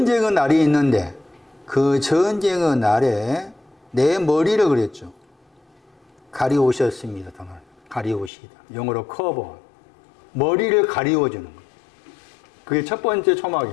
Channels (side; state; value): right; drops out; at 8.3 s